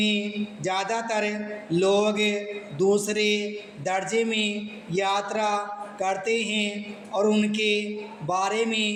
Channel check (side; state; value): both; identical; correlation 1.00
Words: ज़्यादातर लोग दूसरे दर्जे में यात्रा करते हैं और उनके बारे